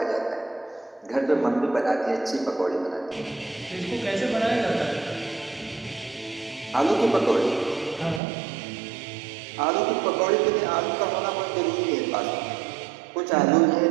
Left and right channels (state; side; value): drops out; left; at 8.2 s